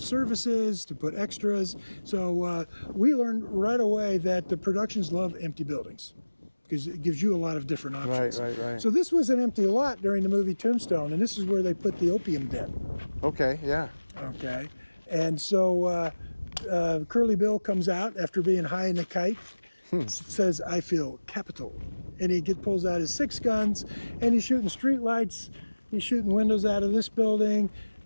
services, to put extras. So we learned right away that the productions love empty buildings because it gives you a lot of different options. Right. So this was an empty lot during the movie Tombstone, and this is where they put the opium den. Okay, yeah. Okay. And so Curly Bill comes out after being high in the kite, says, "I feel capital." And he pulls out his 6 guns, and he's shooting street lights. He's shooting windows out of this building,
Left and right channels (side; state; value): both; inverted; correlation -1.00